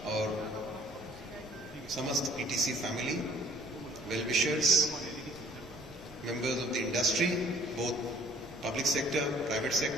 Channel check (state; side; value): noise; right; rumble, 26 dB below the sound